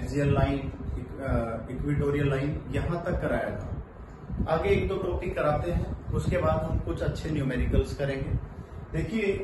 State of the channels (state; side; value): identical; both; correlation 1.00